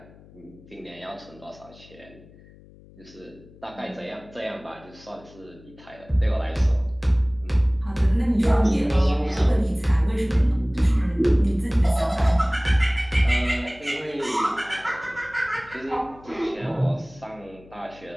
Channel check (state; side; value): noise; left; hum, 23 dB below the sound